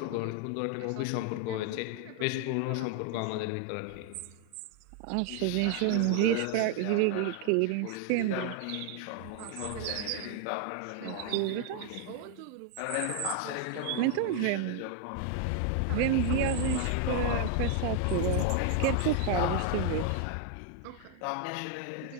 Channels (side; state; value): both; different; correlation 0.00